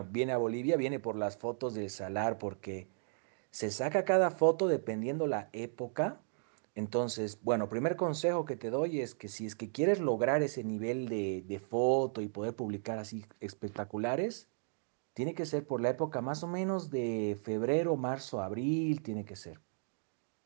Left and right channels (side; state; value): left; silent; digital silence